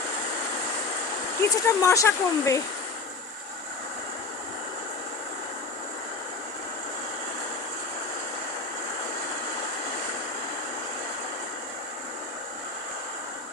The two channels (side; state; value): right; quieter; 4.0 dB